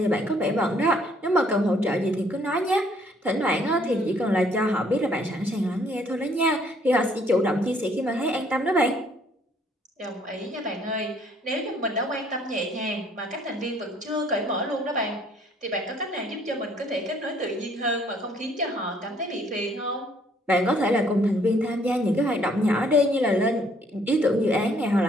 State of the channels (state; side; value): normal; both; correlation 0.63